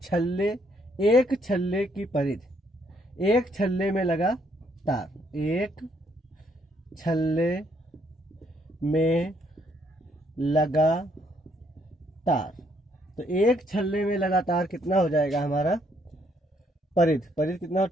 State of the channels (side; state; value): both; normal; correlation 0.70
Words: छल्ले, एक छल्ले की परिधि, एक छल्ले में लगा तार, एक छल्ले में लगा तार। तो एक छल्ले में लगा तार कितना हो जाएगा हमारा? परिधि, परिधि कितना?